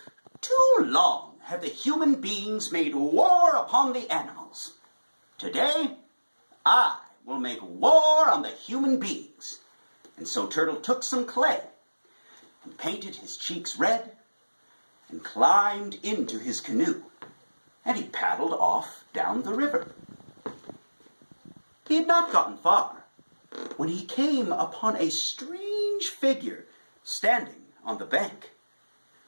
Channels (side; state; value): both; inverted; correlation -1.00